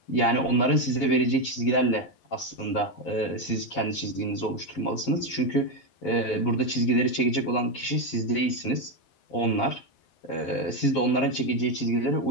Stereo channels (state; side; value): late; right; 11 ms